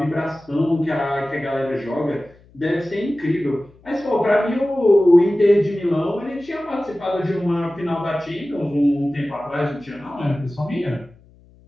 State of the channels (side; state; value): left; noise; hum, 28 dB below the sound